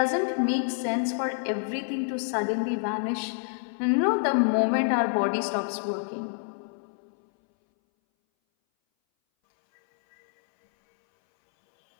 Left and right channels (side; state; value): right; silent; 60 dB below the other